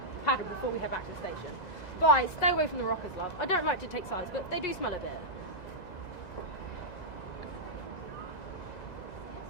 paddle before we head back to the station. Bye, stay away from the rockers, love. I don't like to take sides, but they do smell a bit.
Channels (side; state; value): right; late; 2.0 ms